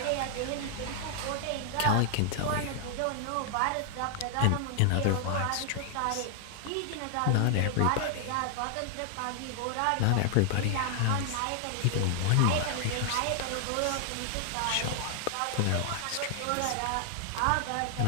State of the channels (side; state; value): both; different; correlation 0.00